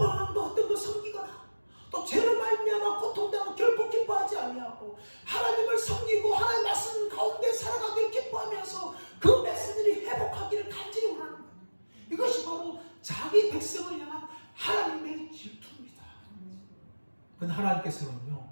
것 어떤 것 섬기거나 또 죄를 말미암아 고통당하고 결코 기뻐하지 아니하고 하나님을 섬기고 하나님 말씀 가운데 살아가길 기뻐하면서 그 백성들이 회복하기를 간절히 원하는 거예요. 이것이 바로 자기 백성을 향한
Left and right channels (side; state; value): both; inverted; correlation -1.00